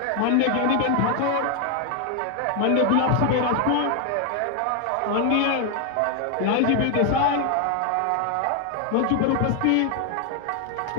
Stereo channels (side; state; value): both; different; correlation 0.00